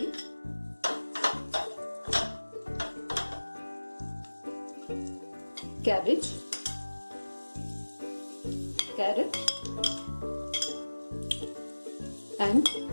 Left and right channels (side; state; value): both; inverted; correlation -1.00